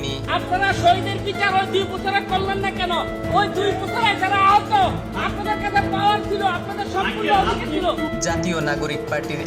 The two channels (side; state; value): both; identical; correlation 1.00